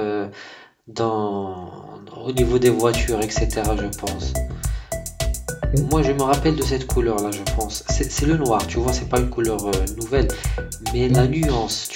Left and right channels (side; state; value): both; identical; correlation 1.00